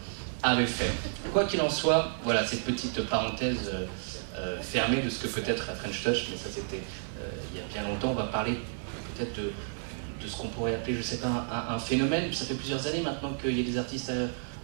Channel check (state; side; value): silent; left; digital silence